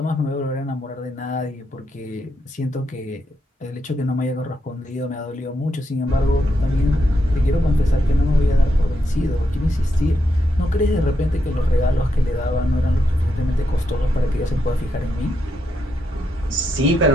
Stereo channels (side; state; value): both; normal; correlation 0.82